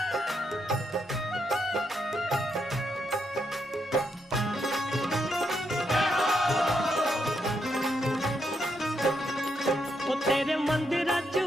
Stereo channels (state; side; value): normal; both; correlation 0.79